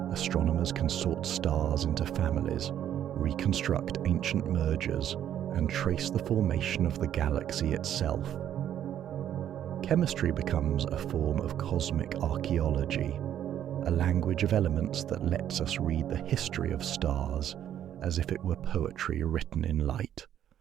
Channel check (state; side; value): quieter; left; 10.5 dB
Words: astronomers can sort stars into families, reconstruct ancient mergers, and trace the formation of the galaxy itself. Chemistry becomes a form of cosmic archaeology, a language of elements that lets us read the history of stars as if it were poetry written in light.